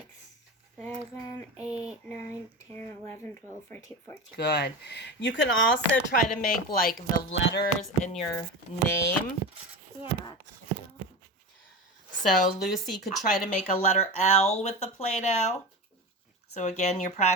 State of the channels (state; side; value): normal; both; correlation 0.25